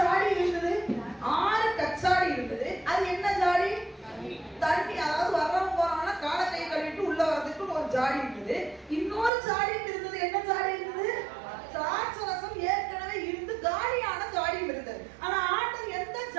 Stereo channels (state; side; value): drops out; left; at 9.3 s